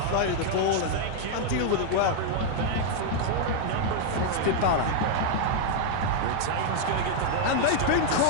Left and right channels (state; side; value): different; both; correlation 0.00